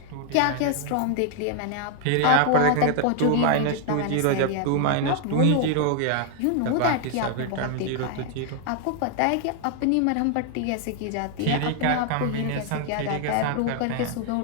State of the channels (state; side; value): different; both; correlation 0.00